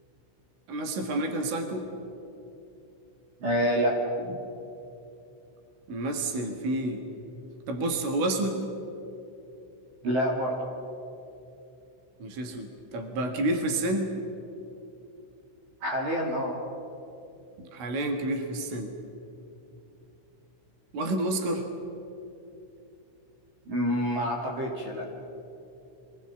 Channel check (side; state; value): left; late; 16 ms